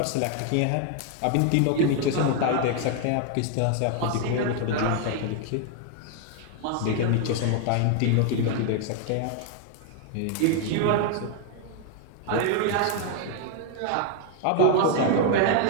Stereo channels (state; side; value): different; both; correlation 0.00